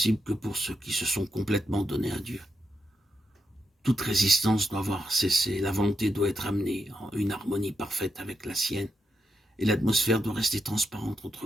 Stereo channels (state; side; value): normal; both; correlation 0.84